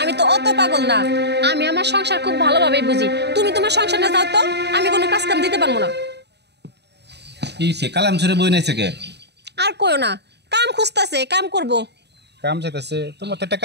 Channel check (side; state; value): left; late; 0.49 ms